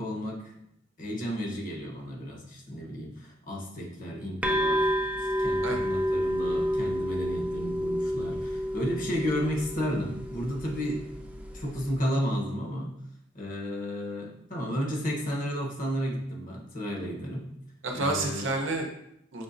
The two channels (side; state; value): both; normal; correlation 0.75